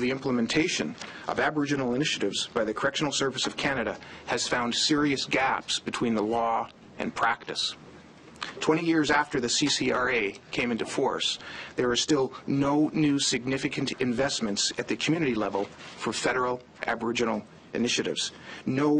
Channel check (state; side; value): identical; both; correlation 1.00